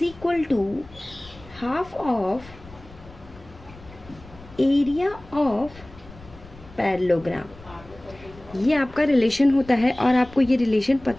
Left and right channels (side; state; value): left; noise; rumble, 20 dB below the sound